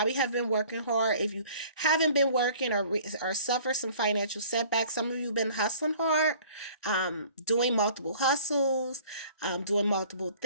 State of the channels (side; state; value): both; inverted; correlation -0.51